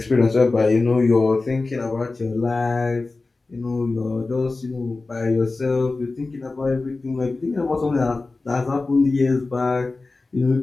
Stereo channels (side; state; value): right; quieter; 3.5 dB